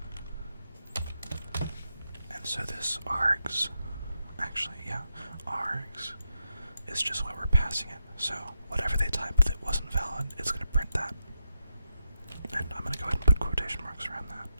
And so this args, actually, yeah, args is just what we're passing it. So whatever they typed that wasn't valid, it's going to print that. And I'm going to go ahead and put quotation marks around that,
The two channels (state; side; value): inverted; both; correlation -0.85